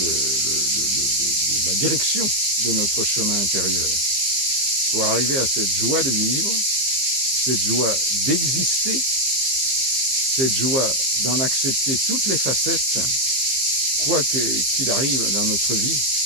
la direction de notre chemin intérieur. Pour arriver à cette joie de vivre, cette joie d'exister, cette joie d'en accepter toutes les facettes, quoi qu'il arrive dans notre vie.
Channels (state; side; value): late; left; 15 ms